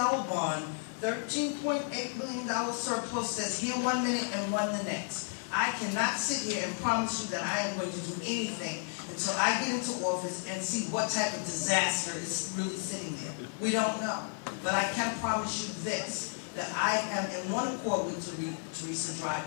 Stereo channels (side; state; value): right; silent; 56 dB below the other